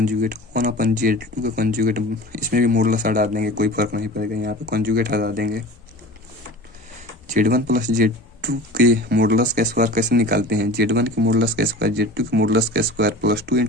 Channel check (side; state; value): both; normal; correlation 0.37